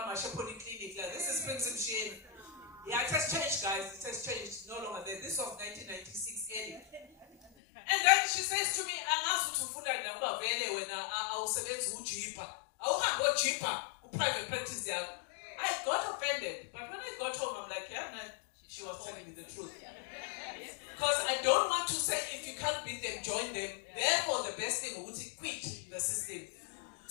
my clinic, this is Prince Msheni. Yeah, it has changed, guys. It has changed. No longer there. This was 1996 early. And then she says to me, I'm asked to food and number when I was select who cheaper. I will go cheaper who private practice there. I got offended. But when I got home, I'm like, yeah, no, she was telling me the truth. Because I don't want to say if you can't beat them, join them. Therefore, the best thing would be quit the system.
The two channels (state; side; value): drops out; right; at 7.5 s